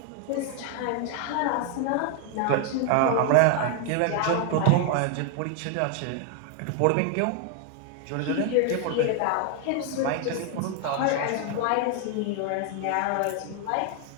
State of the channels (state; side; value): different; both; correlation 0.00